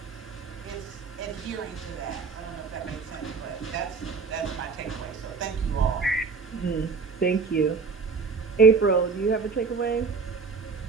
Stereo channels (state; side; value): quieter; left; 4.9 dB